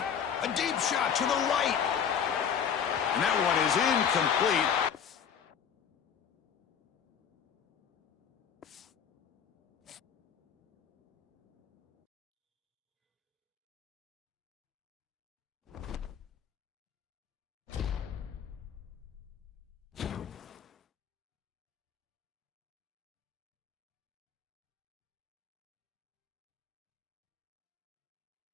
A deep shot to the right. And that one is incomplete.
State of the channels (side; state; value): right; quieter; 7.8 dB